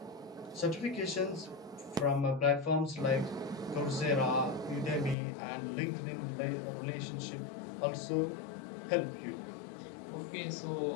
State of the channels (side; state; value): right; drops out; at 5.2 s